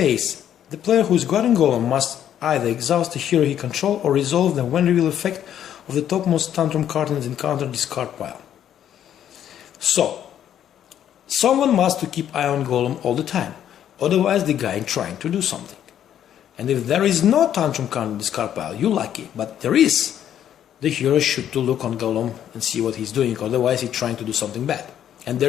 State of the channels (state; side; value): quieter; right; 10.3 dB